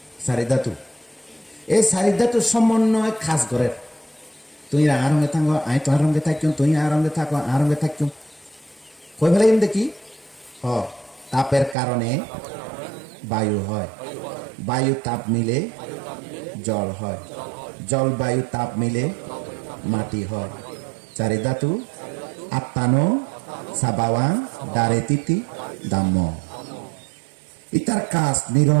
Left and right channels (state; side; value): drops out; left; at 11.8 s